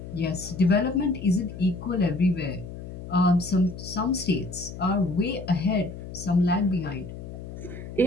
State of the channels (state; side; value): noise; left; hum, 11 dB below the sound